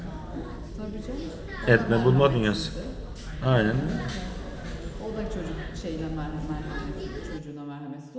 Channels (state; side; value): identical; both; correlation 1.00